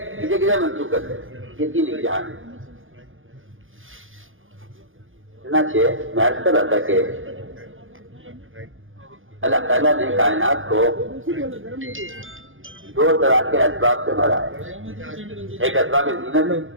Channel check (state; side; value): late; left; 0.58 ms